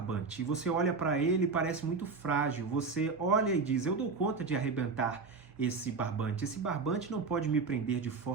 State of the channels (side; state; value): left; quieter; 4.5 dB